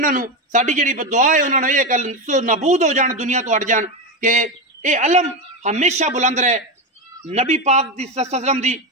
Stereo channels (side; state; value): both; normal; correlation 0.14